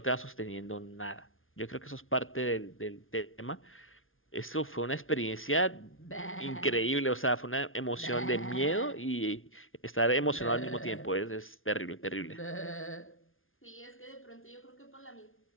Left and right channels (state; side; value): late; right; 0.59 ms